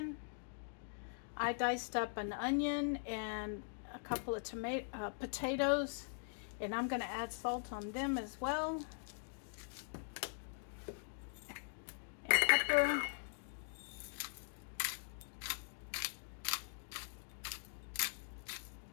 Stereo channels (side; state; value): right; silent; digital silence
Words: I diced up an onion and a couple of potatoes, and I'm going to add salt on them as well, and pepper.